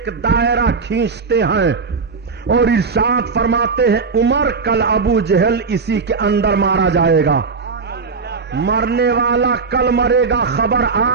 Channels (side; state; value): left; quieter; 4.8 dB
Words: دائرہ کھینچتے ہیں اور ارشاد فرماتے ہیں عمر کل ابو جہل اسی کے اندر مارا جائے گا. مرنے والا کل مرے گا, خبر